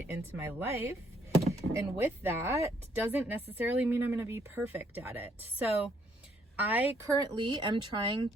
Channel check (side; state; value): both; normal; correlation 0.69